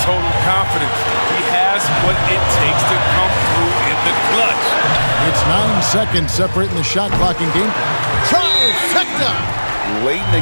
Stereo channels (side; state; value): both; inverted; correlation -1.00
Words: total confidence. He has what it takes to come through in the clutch. It's 9 seconds separating the shot clock and game. Trifecta! late